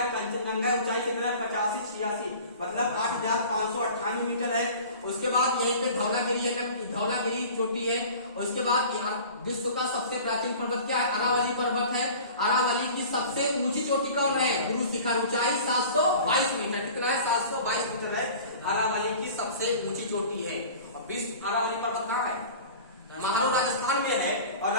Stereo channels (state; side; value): inverted; both; correlation -0.42